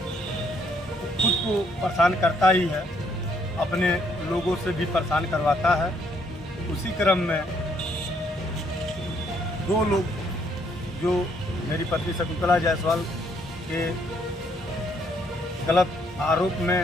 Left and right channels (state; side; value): normal; both; correlation 0.69